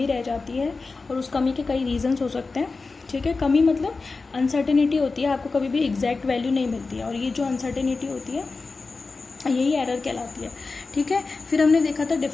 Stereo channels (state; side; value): quieter; right; 4.0 dB